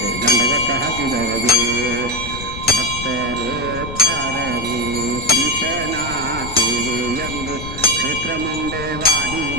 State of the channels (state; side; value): noise; left; rumble, 10 dB below the sound